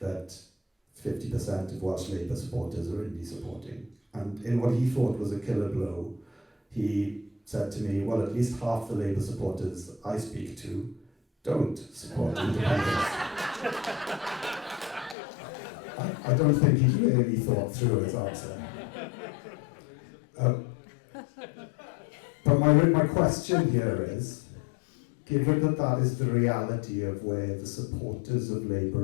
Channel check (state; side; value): drops out; right; at 15.2 s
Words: 50% of Welsh Labour supporters are indie supporting. And in what he thought was a killer blow, he said to me, well, at least half the Labour supporters I speak to don't support independence. I don't think he really thought through his answer. But my question here is, given that is the reality of where the supporters of